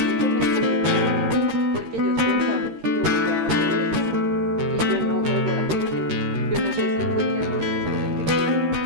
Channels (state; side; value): late; left; 13 ms